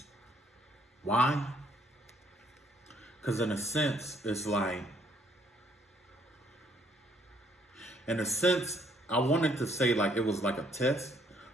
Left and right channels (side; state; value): both; normal; correlation 0.66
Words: Why? Because in a sense, it's like, I wanted to say like it was like a test,